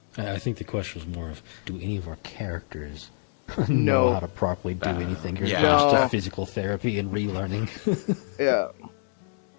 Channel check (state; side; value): silent; right; digital silence